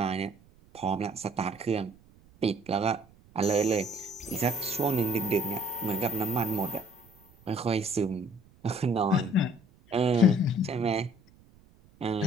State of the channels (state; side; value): noise; right; rumble, 28 dB below the sound